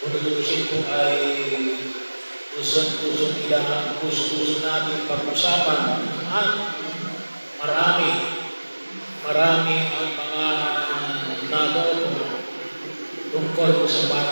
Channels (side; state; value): both; inverted; correlation -1.00